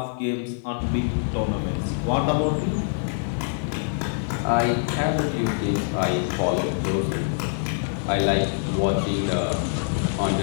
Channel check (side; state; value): right; silent; 62 dB below the other